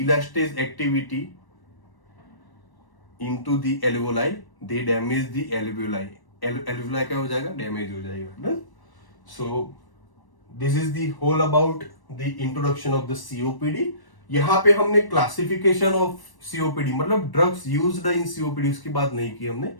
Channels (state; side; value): late; right; 1.1 ms